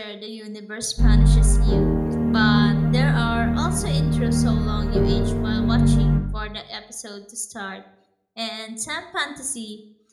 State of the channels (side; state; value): both; identical; correlation 1.00